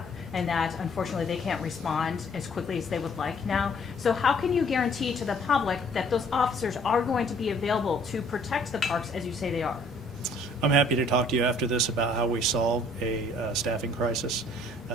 and that unfortunately they can't respond as quickly as they would like now. So how can you guarantee to the public that those officers are going to be available to protect the parks as you say they are? I'm happy to talk to you after this about how we solve a staffing crisis.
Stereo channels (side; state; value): both; normal; correlation 0.59